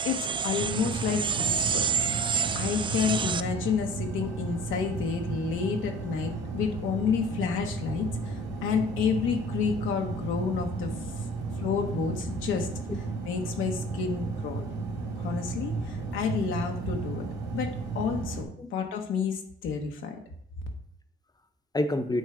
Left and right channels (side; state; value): both; normal; correlation 0.47